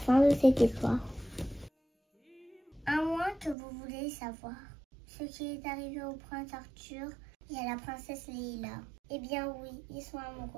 de cette histoire. À moins que vous voulez savoir ce qui est arrivé au prince Arthur et à la princesse Leïla. Eh bien oui, ils sont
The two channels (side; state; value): left; drops out; at 3.6 s